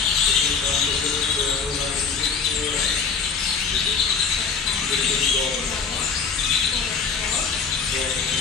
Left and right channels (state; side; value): quieter; right; 5.5 dB